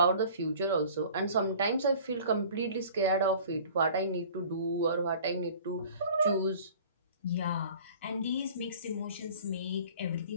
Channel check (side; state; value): both; inverted; correlation -0.47